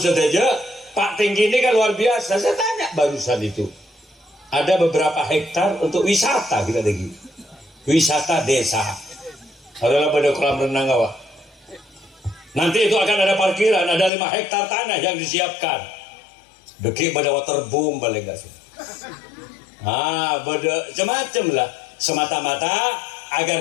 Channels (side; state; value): right; drops out; at 14.1 s